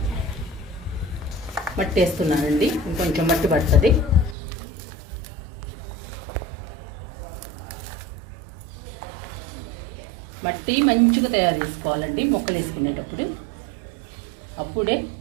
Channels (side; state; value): left; drops out; at 4.4 s